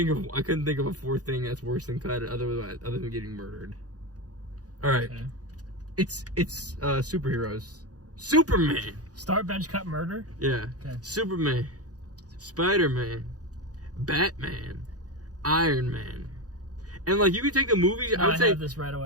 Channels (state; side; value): late; left; 0.67 ms